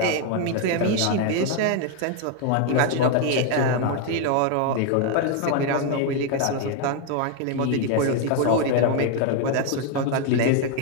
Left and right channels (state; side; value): different; both; correlation 0.01